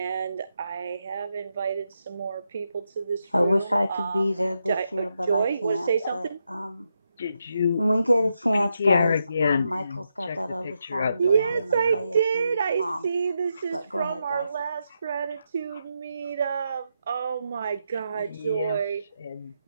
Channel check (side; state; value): both; inverted; correlation -0.84